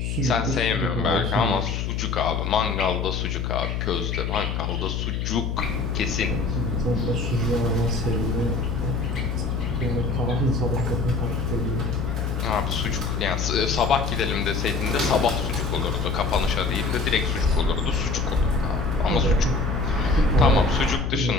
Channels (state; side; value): noise; left; hum, 2 dB below the sound